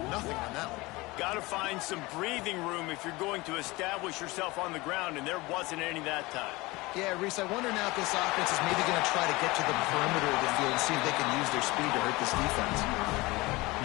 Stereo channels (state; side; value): quieter; right; 22.1 dB